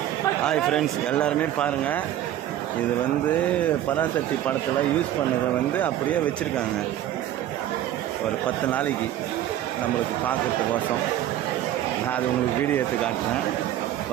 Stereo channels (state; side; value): quieter; left; 12.2 dB